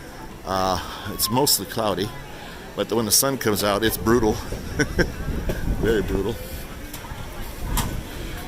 It's mostly cloudy, but when the sun comes out, it's brutal. Very brutal.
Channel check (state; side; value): identical; both; correlation 1.00